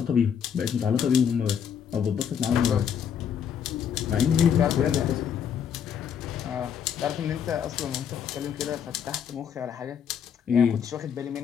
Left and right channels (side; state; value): right; quieter; 8.0 dB